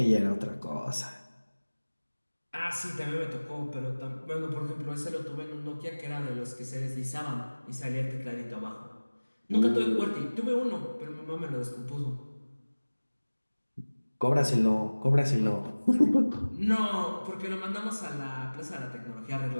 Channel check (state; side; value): inverted; both; correlation -1.00